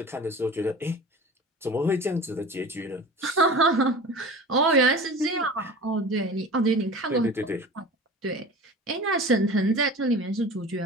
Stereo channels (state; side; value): normal; both; correlation 0.37